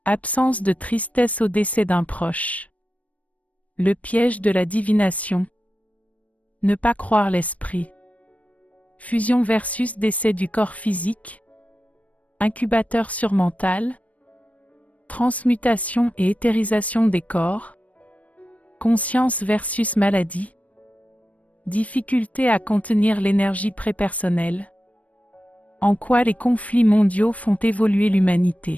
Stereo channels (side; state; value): right; late; 0.068 ms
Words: Absence de tristesse au décès d'un proche. Le piège de la divination. Ne pas croire l'esprit. Fusion versus décès du corps physique. Incubateur surmental. Transmutation et éthérisation des corps. Conscience versus maladie. Difficulté à contenir l'énergie prépersonnelle. En quoi les conflits mondiaux font évoluer